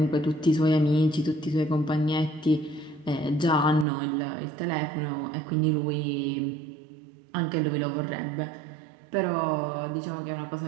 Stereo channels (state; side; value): drops out; left; at 3.9 s